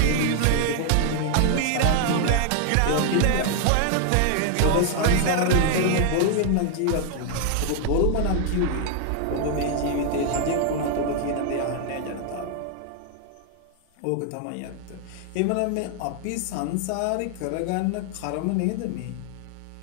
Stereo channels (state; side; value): different; both; correlation 0.00